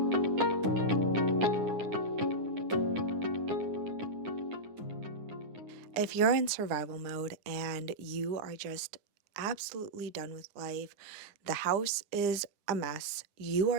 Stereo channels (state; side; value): late; left; 9.8 ms